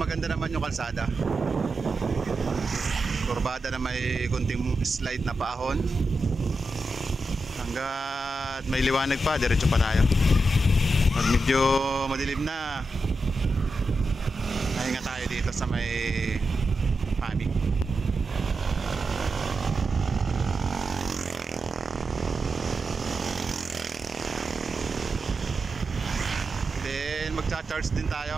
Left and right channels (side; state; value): both; normal; correlation 0.89